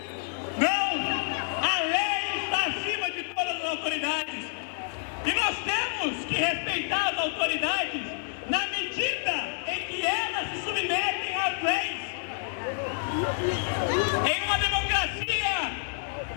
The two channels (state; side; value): silent; right; digital silence